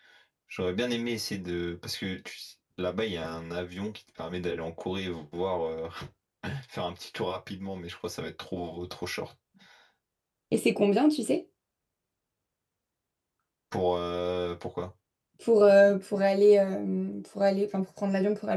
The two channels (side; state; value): both; identical; correlation 1.00